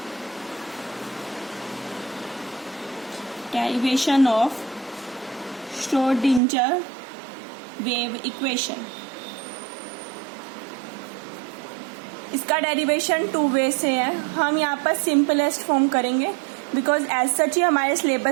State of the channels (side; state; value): left; drops out; at 6.4 s